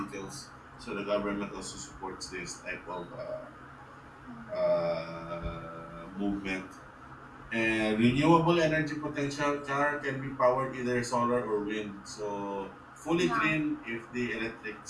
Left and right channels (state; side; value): identical; both; correlation 1.00